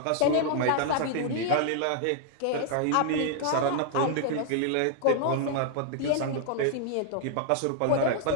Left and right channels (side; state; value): both; different; correlation 0.00